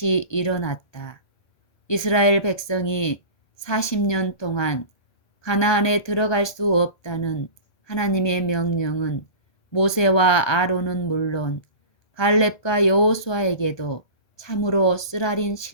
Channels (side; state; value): right; late; 1.3 ms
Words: 일어났다. 이스라엘 백성이 40년 동안 가나안에 들어갈 수 없다는 하나님의 명령은 모세와 아론은 물론 갈렙과 여호수아에게도 참으로 쓰라린